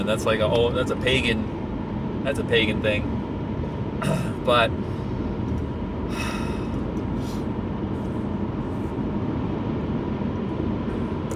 That's like that's a pagan thing. But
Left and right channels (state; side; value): identical; both; correlation 1.00